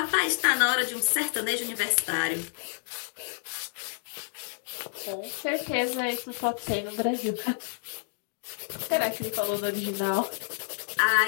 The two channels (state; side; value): silent; right; 58 dB below the other